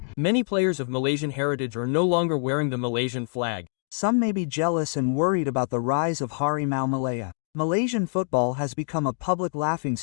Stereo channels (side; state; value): right; silent; 61 dB below the other